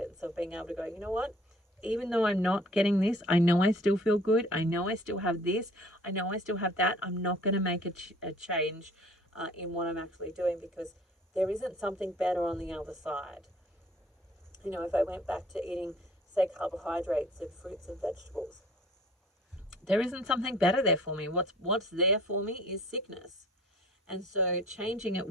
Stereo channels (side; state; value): both; normal; correlation 0.52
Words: of being able to go, you know what, even though I'm not getting this, I know I still feel good. I know I still have this. I know I still have that. I'm not going to make a change in what I'm actually doing, because there isn't something better on the other side. You know, if I went back to eating, say, carbohydrates and fruits and vegetables, there isn't something better there for me. What's there for me is sickness. And so changing